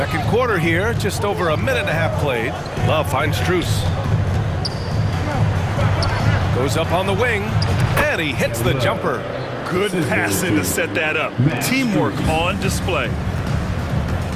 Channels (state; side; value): identical; both; correlation 1.00